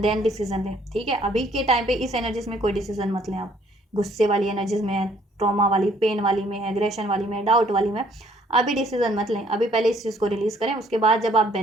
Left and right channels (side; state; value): both; normal; correlation 0.63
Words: देन डिसीजन लें, ठीक है। अभी के टाइम पे इस एनर्जीज में कोई डिसीजन मत लें आप, गुस्से वाली एनर्जीज में है, ट्रॉमा वाली, पेन वाली में है, एग्रेशन वाली में, डाउट वाली में, अभी डिसीजन मत लें, अभी पहले इस चीज़ को रिलीज करें, उसके बाद जब आप